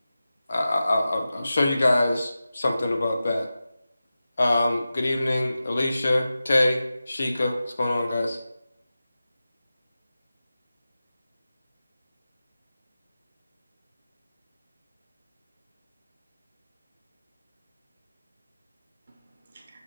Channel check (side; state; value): both; inverted; correlation -0.94